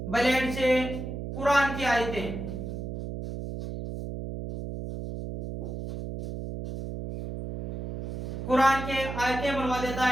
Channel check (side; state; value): right; noise; hum, 6 dB below the sound